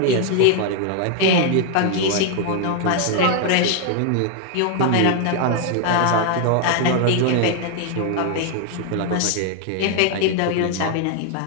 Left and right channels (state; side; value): different; both; correlation 0.00